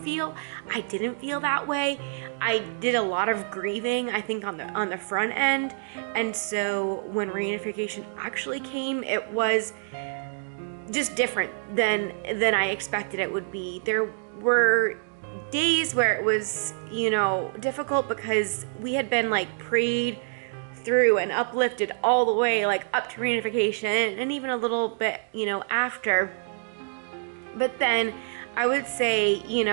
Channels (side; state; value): left; silent; digital silence